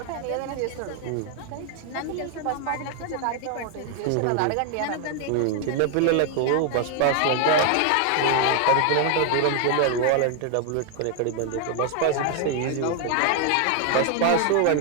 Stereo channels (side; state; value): both; different; correlation 0.00